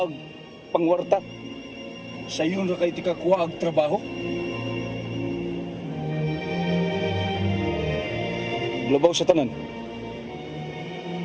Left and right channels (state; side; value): identical; both; correlation 1.00